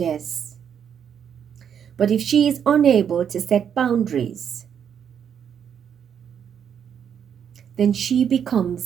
But if she is unable to set boundaries, then she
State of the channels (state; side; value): quieter; left; 8.2 dB